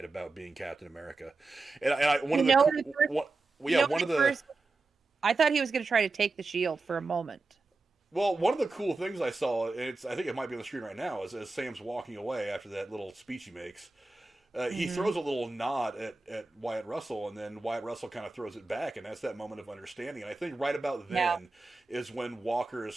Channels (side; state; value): left; quieter; 3.5 dB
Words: about being Captain America. And I one You of the know, one, Well, yeah, one of the first, I thought he was going to try to take the shield for a moment. well, one of the cool things I saw, and I think it might be on the screen right now, is as Sam's walking away after that little speech he makes. He throws a little nod at Wyatt Russell, and then Wyatt Russell kind of throws it back, and that's that moment of understanding. And I think right about then is when Walker